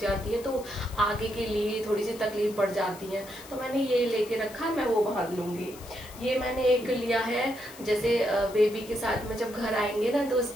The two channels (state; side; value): noise; left; hiss, 18 dB below the sound